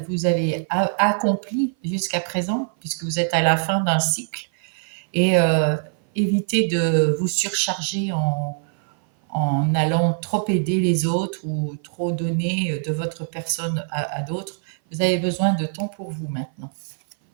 avez accompli jusqu'à présent, puisque vous êtes à la fin d'un cycle. Et évitez de vous surcharger en allant trop aider les autres ou trop donner de votre personne à d'autres. Vous avez besoin de temps pour vous maintenant.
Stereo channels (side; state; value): left; silent; 57 dB below the other